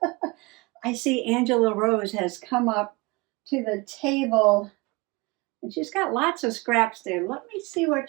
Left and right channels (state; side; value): quieter; left; 25.3 dB